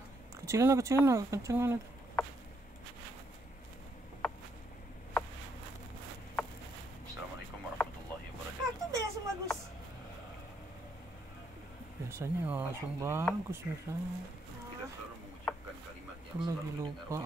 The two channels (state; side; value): normal; both; correlation 0.75